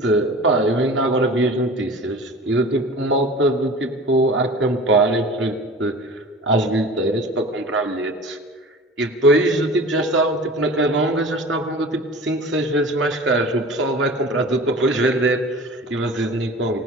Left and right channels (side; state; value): both; normal; correlation 0.39